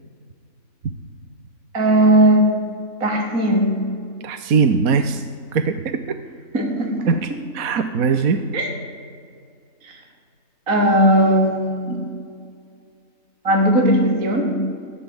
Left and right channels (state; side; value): late; left; 4.1 ms